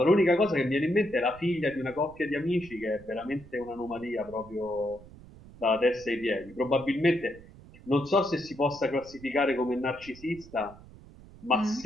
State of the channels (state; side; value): noise; right; rumble, 20 dB below the sound